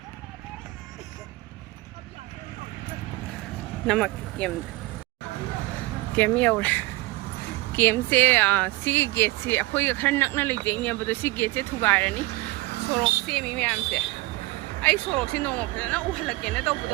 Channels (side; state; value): left; quieter; 21.0 dB